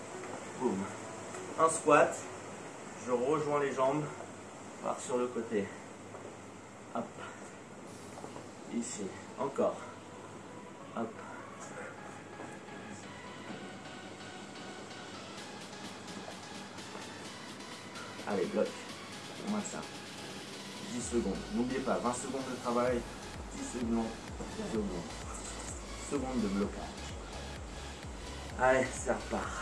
Boum. Un squat. Je rejoins les jambes. Par sur le côté. Hop. Ici. Encore. Hop. Allez, bloc. On maintient. 10 secondes. N'oubliez pas, 20 secondes de travail, 10 secondes de blocage. Allez, ça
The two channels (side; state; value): both; identical; correlation 1.00